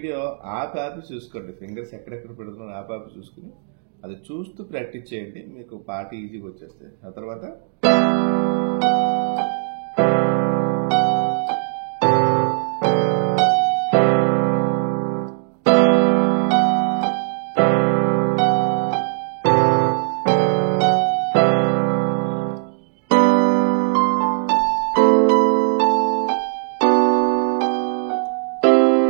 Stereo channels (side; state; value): left; silent; 62 dB below the other